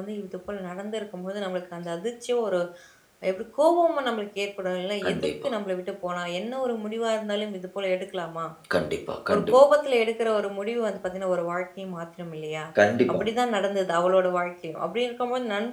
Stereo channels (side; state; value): both; identical; correlation 1.00